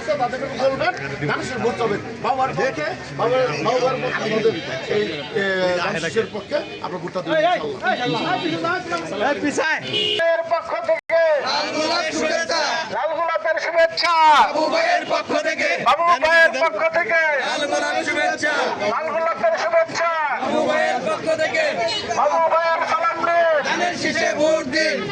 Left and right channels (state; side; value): identical; both; correlation 1.00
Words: আছে তাদেরকে বলবেন মানুষের ভোট হবে বাবার পক্ষে, বাবার আমাদের এই মানুষের পক্ষে আমরা ভোটটা দেবো। পক্ষ থেকে লাল গোলাপের শুভেচ্ছা, বাবু ভাইয়ের পক্ষ থেকে বাবু ভাইয়ের পক্ষ থেকে লাল গোলাপের শুভেচ্ছা, লাল গোলাপের শুভেচ্ছা, বাবু ভাইয়ের পক্ষ থেকে বাবু ভাইয়ের সালাম দিন, ধানের শীষে ভোট দিন,